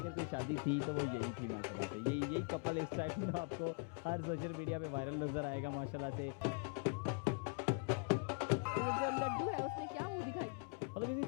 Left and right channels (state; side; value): quieter; right; 37.8 dB